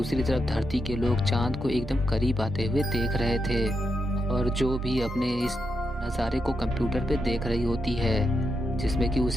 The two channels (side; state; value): both; normal; correlation 0.84